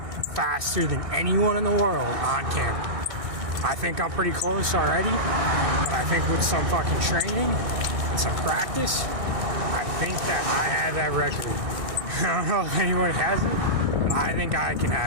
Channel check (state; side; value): late; left; 1.6 ms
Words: faster than anyone in the world on camera. I think I'm pretty close already, but I think with some fucking training and some practice, I think that I have that record. I don't know if anyone has it, but I think I can